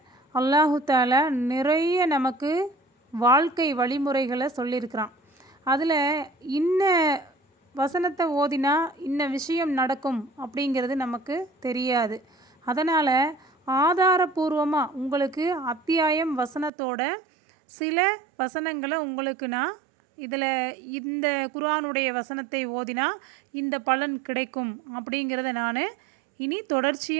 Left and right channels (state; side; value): drops out; left; at 16.7 s